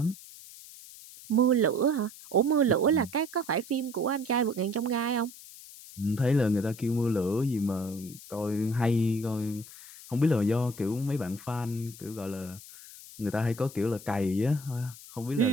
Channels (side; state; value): left; noise; hiss, 17 dB below the sound